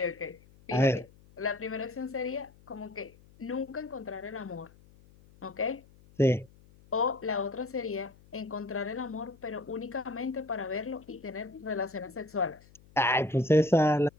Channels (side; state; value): left; noise; hum, 26 dB below the sound